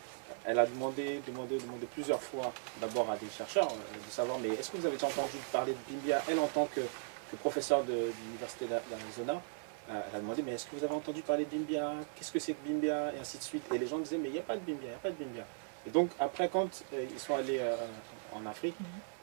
elle a demandé plusieurs fois d'abord à des chercheurs de savoir, mais est-ce que vous avez déjà entendu parler de Bimbia? Elle, en tant que professeure de l'université d'Arizona, elle a demandé, mais est-ce que vous avez entendu parler de Bimbia? Qu'est-ce que c'est que Bimbia? Et ainsi de suite. Et les gens disaient, mais il n'y a pas de Bimbia, il n'y a pas de Bimbia. Et donc, après, quand ils sont allés en Afrique,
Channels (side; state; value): left; silent; 53 dB below the other